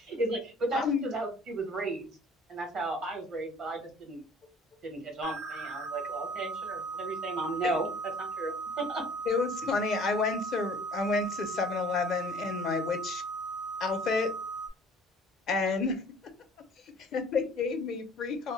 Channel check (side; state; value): both; normal; correlation 0.50